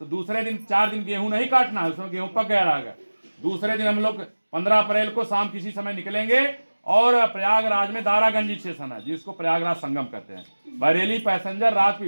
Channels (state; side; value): inverted; both; correlation -1.00